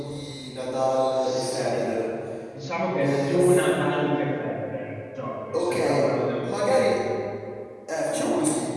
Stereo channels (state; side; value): identical; both; correlation 1.00